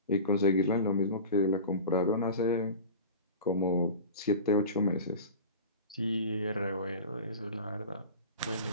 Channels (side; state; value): both; inverted; correlation -0.34